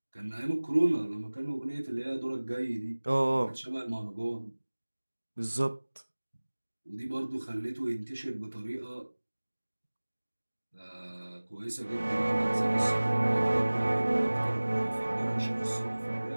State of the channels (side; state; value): both; inverted; correlation -1.00